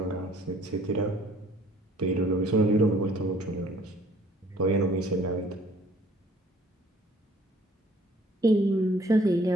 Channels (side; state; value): both; normal; correlation 0.57